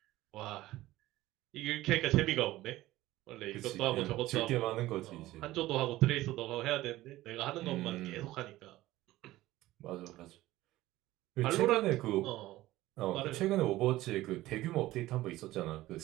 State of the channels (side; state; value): left; quieter; 16.7 dB